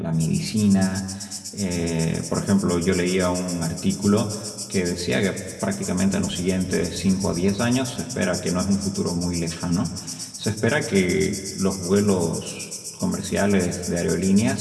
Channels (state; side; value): identical; both; correlation 1.00